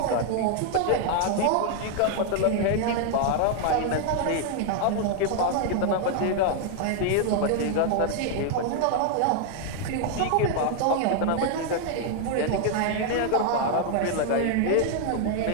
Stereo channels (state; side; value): different; both; correlation 0.00